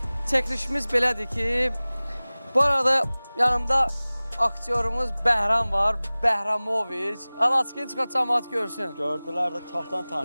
çəkilişimiz belədir ki, bu arada yanımda aktyorumuz Bəhram var, Bəhramoviç. Alaçıqın çıxart cəmaət görsün. Gördülər də çoxdan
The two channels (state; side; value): inverted; both; correlation -0.99